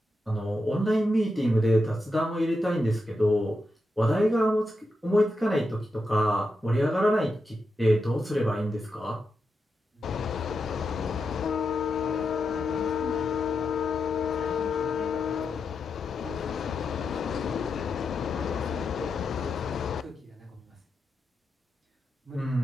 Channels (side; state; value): both; normal; correlation 0.87